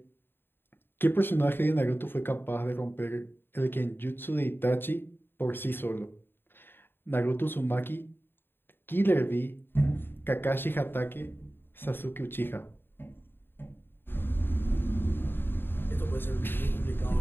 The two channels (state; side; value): late; right; 0.10 ms